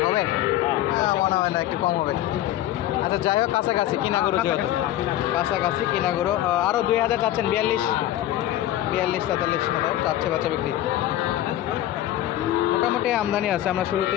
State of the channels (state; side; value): quieter; right; 13.5 dB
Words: হবে? হ্যাঁ, মনে হয় না, একটু কম হবে। আচ্ছা, যাই হোক, কাছাকাছি কিনা গরু, যেহেতু কাছাকাছি কিনা গরু। আরও 2,000 চাচ্ছেন? 42-43 মতো চাচ্ছে বেচা বিক্রি। মোটামুটি আমদানি আছে। আমরা